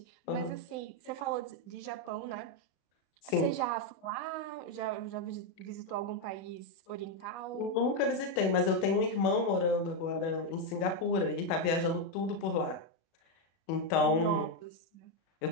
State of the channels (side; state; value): right; late; 37 ms